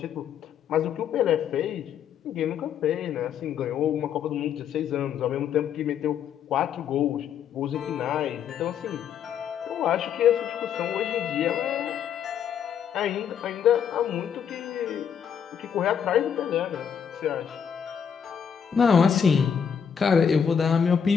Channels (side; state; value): right; quieter; 7.8 dB